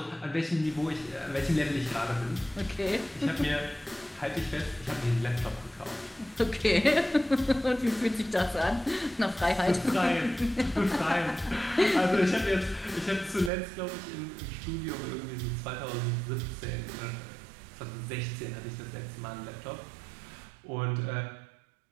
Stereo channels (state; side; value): drops out; left; at 13.5 s